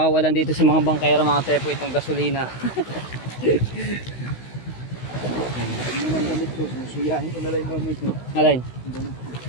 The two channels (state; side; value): late; right; 16 ms